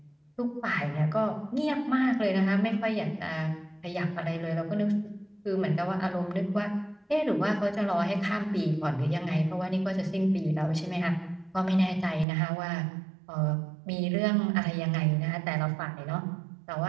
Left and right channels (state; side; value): drops out; left; at 12.2 s